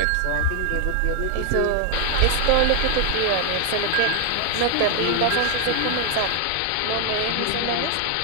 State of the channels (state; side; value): different; both; correlation 0.01